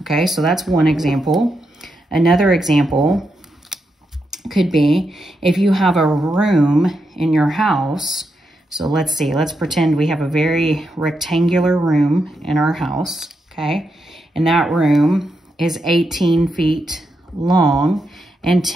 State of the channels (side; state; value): both; normal; correlation 0.84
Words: okay? So that's one example. Another example could be if you have a room in your house. So let's see, let's pretend we have a very rectangular room in our house, okay? And that room is 18 feet long and